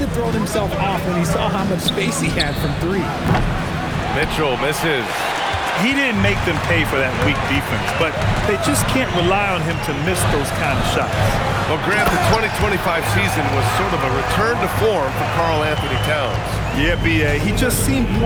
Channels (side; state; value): both; identical; correlation 1.00